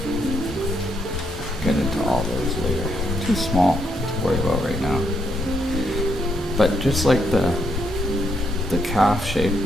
Get into all those later. Too small to worry about right now. But just like the calf shape,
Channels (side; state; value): both; normal; correlation 0.76